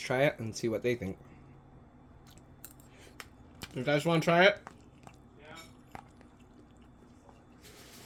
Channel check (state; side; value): identical; both; correlation 1.00